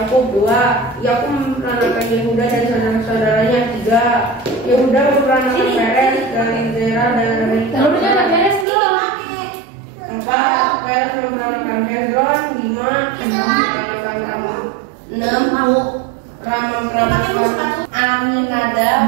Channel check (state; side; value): drops out; left; at 8.7 s